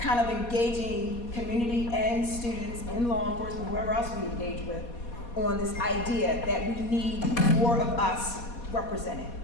of engaging community and students and law enforcement, whoever else we engage with, on this idea that we need more of us represented.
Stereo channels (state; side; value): late; right; 4.2 ms